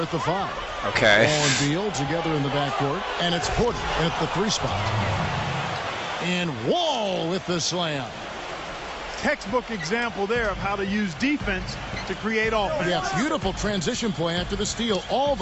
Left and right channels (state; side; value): identical; both; correlation 1.00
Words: at the 5. Okay. Wall and Beal together in the backcourt. And it's Porter at the 3 spot. And Wall with the slam. Textbook example there of how to use defense to create offense. Yeah, beautiful transition play after the steal all